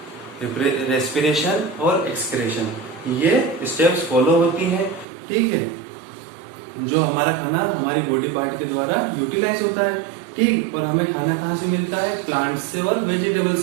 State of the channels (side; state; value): left; drops out; at 5.1 s